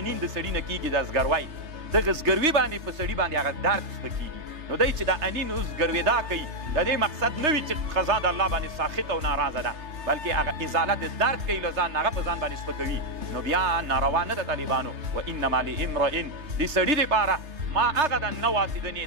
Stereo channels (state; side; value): late; left; 3.3 ms